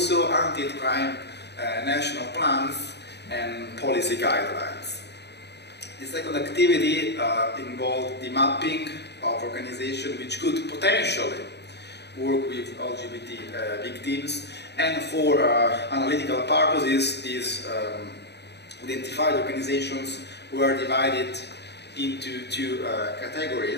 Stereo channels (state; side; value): late; right; 0.49 ms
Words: anti-hate crime national plans and policy guidelines. The second activity involved the mapping of organizations which could potentially work with LGBT victims, and for analytical purposes, these identified organizations were divided into two